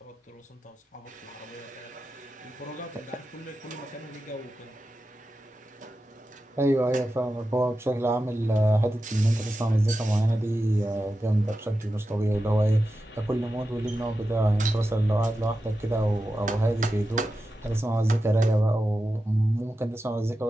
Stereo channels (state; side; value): normal; both; correlation 0.91